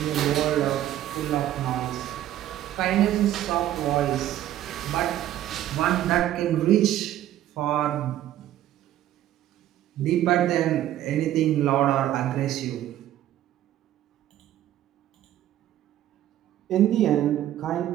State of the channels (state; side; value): quieter; left; 12.7 dB